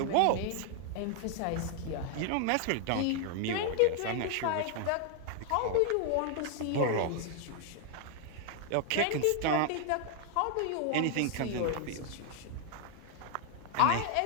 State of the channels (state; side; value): different; both; correlation 0.00